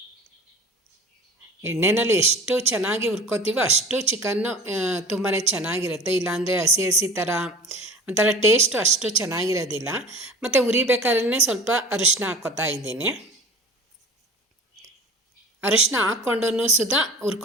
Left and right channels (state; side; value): normal; both; correlation 0.39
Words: ಎಣ್ಣೆಯಲ್ಲಿ ಎಷ್ಟು ಚೆನ್ನಾಗಿ ಹುರ್ಕೋತೀವೋ ಅಷ್ಟು ಚಿಕನ್ನು ತುಂಬಾ ಚೆನ್ನಾಗಿರುತ್ತೆ. ಇಲ್ಲಾಂದರೆ ಹಸಿ ಹಸಿ ಥರ ಒಂಥರ ಟೇಸ್ಟು ಅಷ್ಟು ಚೆನ್ನಾಗಿರೋದಿಲ್ಲ. ಮತ್ತು ಉರಿಬೇಕಾದ್ರೆ ಸ್ವಲ್ಪ ಅರಿಶಿನ ಹಾಕ್ಕೋತಾ ಇದ್ದೀನಿ. ಅರಿಶಿನ ಹಾಕ್ಕೊಂಡು ಸುಧಾ